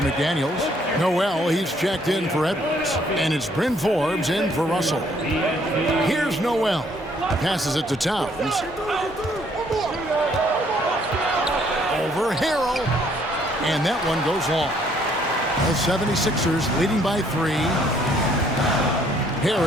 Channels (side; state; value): both; normal; correlation 0.65